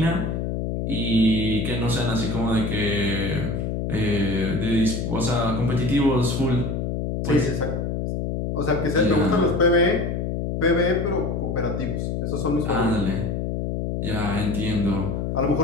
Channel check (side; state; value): left; noise; hum, 2 dB below the sound